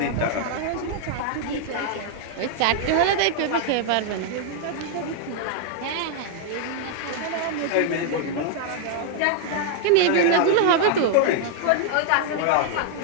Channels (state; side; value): different; both; correlation 0.00